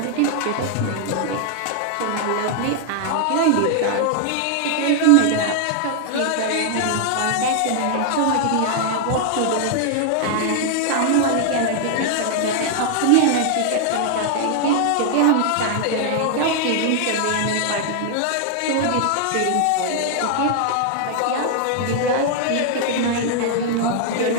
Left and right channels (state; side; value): different; both; correlation 0.00